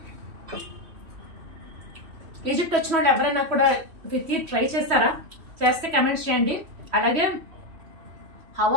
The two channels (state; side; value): late; left; 3.1 ms